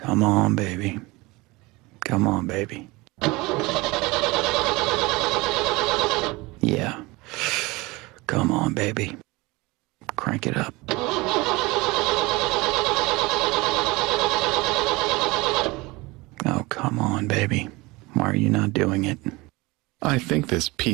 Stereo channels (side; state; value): left; quieter; 23.0 dB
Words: Come on, baby. Come on, baby. Yeah. Come on, baby. Crank it up. Oh, come on, baby. Why are you not doing it? I think this